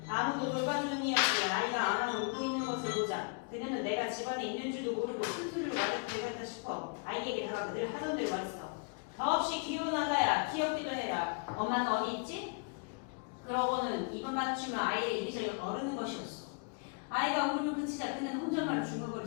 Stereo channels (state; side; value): quieter; right; 35.7 dB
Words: 아무도 돌봐주는 이 없이 아이가 아마 울고 있는 것을 보자 그녀는 내가 집안에 있는 줄도 모르고 큰소리로 말을 대갔다 싶어 아이에게 다가가 늘 하던 대로 말했어. 더없이 귀여운 아가야, 귀엽기도 해라. 엄마는 어디 있지? 그러고는 입을 맞추며 아이의 이리저리 어르는 것이었어. 아이가 울음을 그치자 그는 혼잣말을